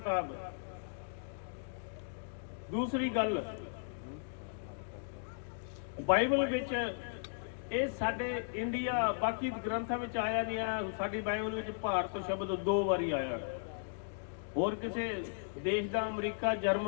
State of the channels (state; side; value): silent; right; digital silence